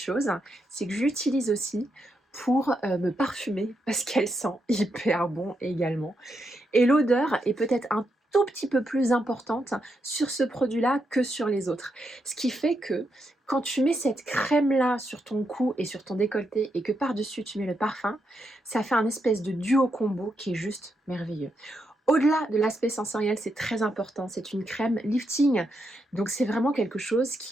c'est que j'utilise aussi pour me parfumer parce qu'elle sent hyper bon également. Et l'odeur est peut-être un tout petit peu plus importante sur ce produit-là que sur les autres. Ce qui fait que quand tu mets cette crème-là sur ton cou et sur ton décolleté et que par-dessus tu mets le parfum, ça fait un espèce de duo combo qui est juste merveilleux. Au-delà de l'aspect sensoriel, c'est très important, c'est une crème lifting, donc c'est vraiment quelque chose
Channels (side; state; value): both; normal; correlation 0.82